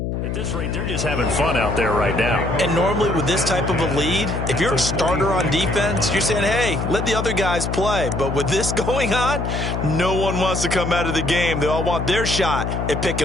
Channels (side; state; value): left; noise; hum, 2 dB below the sound